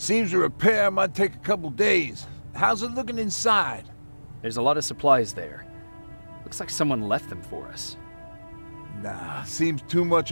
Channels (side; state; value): both; inverted; correlation -1.00